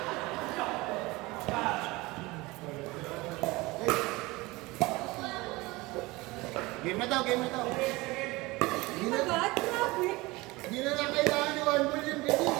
Game na daw, game na daw. Hindi na ba? Grabe. Hindi na lang kailangan ni One Ball yung video.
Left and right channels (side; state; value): left; quieter; 22.0 dB